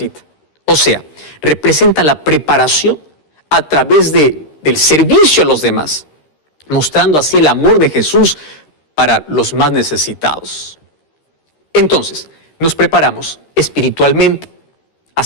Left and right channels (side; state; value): right; late; 13 ms